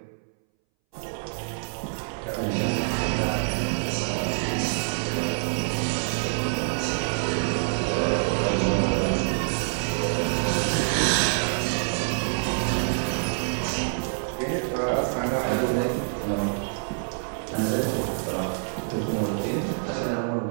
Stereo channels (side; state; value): left; silent; 61 dB below the other